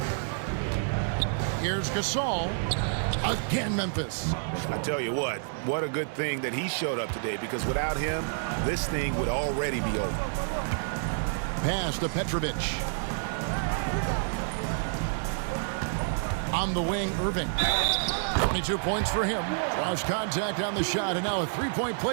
Here's Gasol. Again, Memphis. I tell you what a good thing that he showed up today, because without him, this thing would already be over. Pass to Petrovic. On the wing, Irving. 22 points for him. Draws contact on the shot, and now a 3-point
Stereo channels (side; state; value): left; silent; digital silence